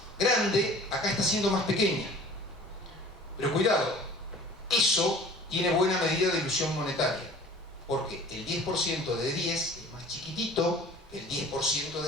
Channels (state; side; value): normal; both; correlation 0.46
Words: grande, acá está siendo más pequeña. Pero cuidado, eso tiene buena medida de ilusión monetaria, porque el 10% de 10 es más chiquitito que el 10%